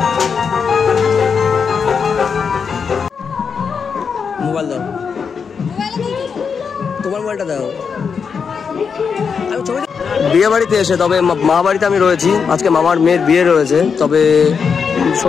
মোবাইল দাও, তোমার মোবাইলটা দাও। বিয়ে বাড়িতে এসে, তবে মা বাড়িতে আমি রয়েছি, আজকে মামার মেয়ের বিয়ে রয়েছে। তবে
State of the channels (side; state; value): right; quieter; 6.1 dB